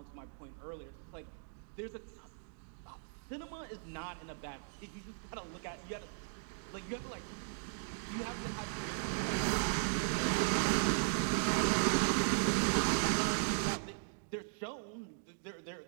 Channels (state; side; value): silent; left; digital silence